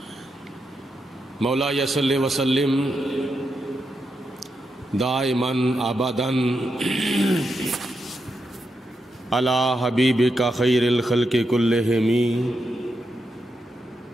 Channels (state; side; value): normal; both; correlation 0.85